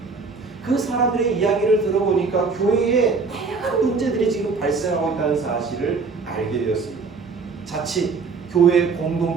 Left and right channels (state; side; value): quieter; left; 4.6 dB